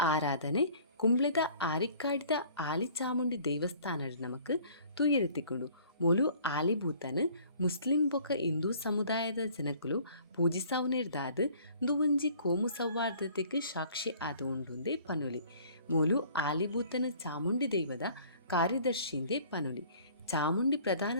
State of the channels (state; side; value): inverted; both; correlation -0.53